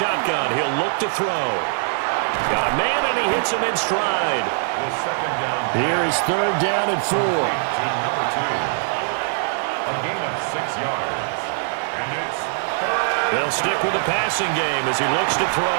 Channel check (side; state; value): left; silent; 64 dB below the other